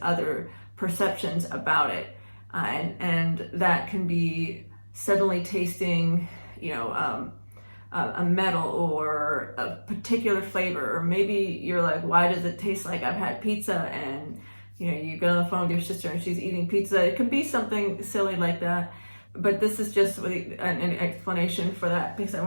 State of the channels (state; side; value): inverted; both; correlation -1.00